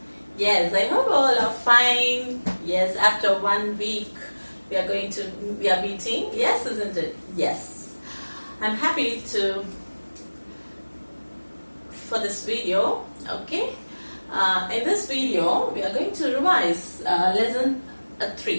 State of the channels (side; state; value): both; inverted; correlation -1.00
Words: Yes, I hope all are fine. Yes, after 1 week we are meeting. Yes, isn't it? Yes. I'm happy for this video. Okay. In this video we are going to revise lesson